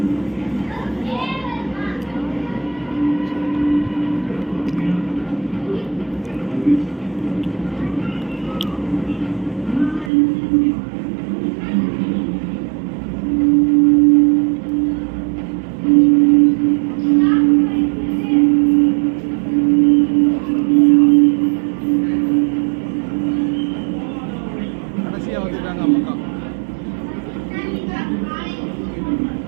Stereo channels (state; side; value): drops out; left; at 10.1 s